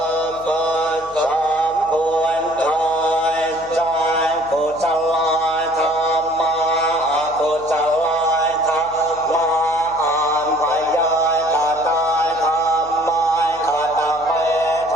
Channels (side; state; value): left; noise; hum, 23 dB below the sound